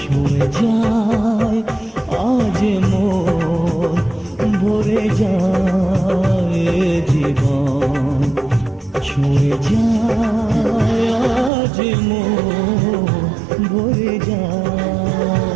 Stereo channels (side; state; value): left; drops out; at 11.5 s